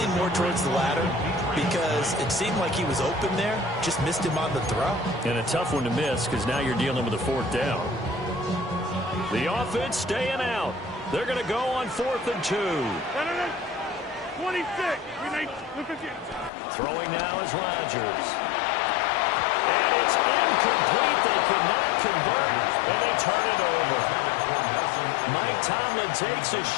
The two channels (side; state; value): right; drops out; at 16.5 s